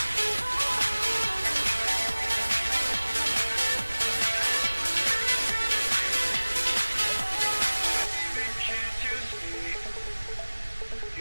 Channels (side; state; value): both; inverted; correlation -1.00